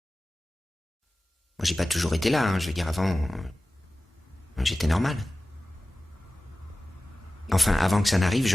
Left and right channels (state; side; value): normal; both; correlation 0.96